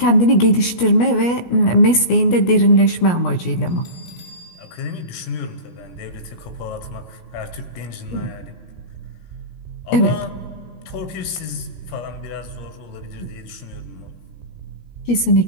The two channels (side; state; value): right; late; 17 ms